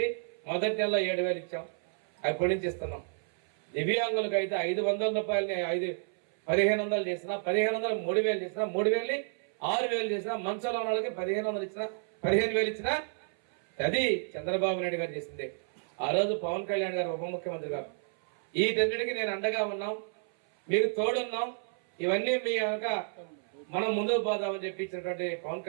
మొదటి నెలలో 7,000 ఇచ్చాం, అప్పటి నుంచి ఇస్తున్నాం. దివ్యాంగులకు అయితే 500 రూపాయలని 1,500 చేసినా, 1,500 3,000 చేసినా, 3,000 6,000 చేసినా, మంచంలో ఉన్న వాళ్ళకి 1,500 ఇచ్చినా, 15,000 ఇచ్చినా అది చంద్రబాబు నాయుడు గారు చేసిందే. ఆ రోజు పవన్ కళ్యాణ్ గారు ఉప ముఖ్యమంత్రి గారు వీటన్నిటికీ నేను అండగా ఉన్నాం, మీకు తోడున్నాం, ఇవన్నీ మీ కనుక మనం ముందుకు పోదామని చెప్పి ఇచ్చినటువంటి పవన్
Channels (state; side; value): silent; left; 57 dB below the other